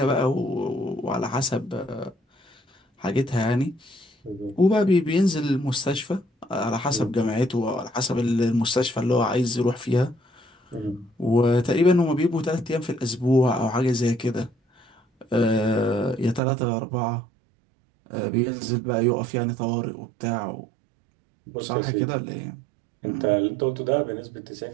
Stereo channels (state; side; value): drops out; left; at 16.4 s